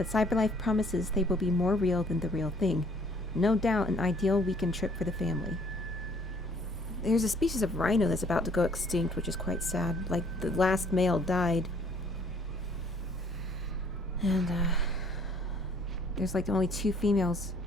CyberLife promises they will be more real than the real thing. No doubt an ideal weekend trip for the family. There's a species of rhino that's about to go extinct, which is quite sad. Like, the last male died. And, there's like only 2 females.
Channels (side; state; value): both; normal; correlation 0.60